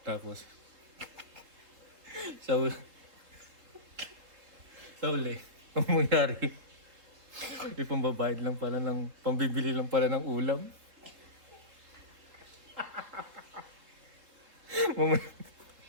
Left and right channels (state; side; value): late; left; 3.7 ms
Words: Tapos, sa uli, ang mangyari, ipambabayad lang pala ng, pambibili lang pala ng ulam.